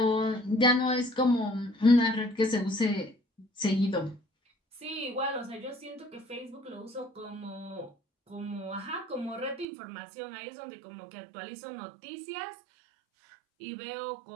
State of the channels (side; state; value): left; drops out; at 9.7 s